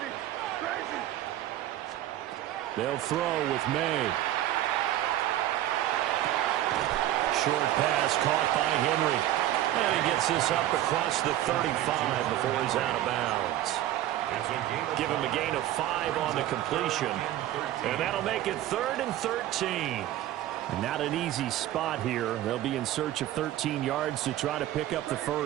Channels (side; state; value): left; quieter; 13.4 dB